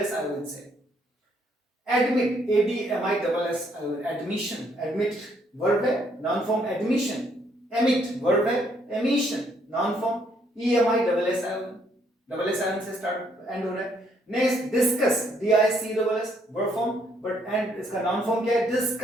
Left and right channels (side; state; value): both; normal; correlation 0.69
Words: आयोन से। Admit, ADMISS ion, admission, admit verb है, noun form admission, emit verb है, emission, noun form EMISS ion, double S ion से स्टार्ट एंड हो रहा है। Next discuss, DISCUSS verb form, but end इसका noun form क्या है,